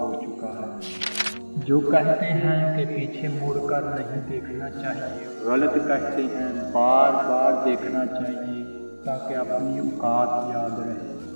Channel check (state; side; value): inverted; both; correlation -1.00